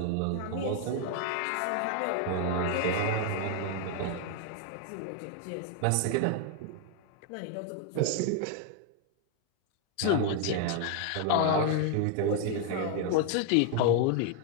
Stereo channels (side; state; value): both; different; correlation 0.01